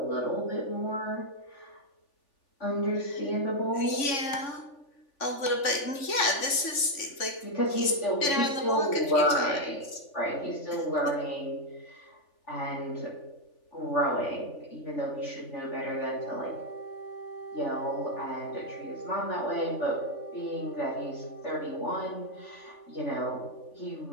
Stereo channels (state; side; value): late; right; 3.4 ms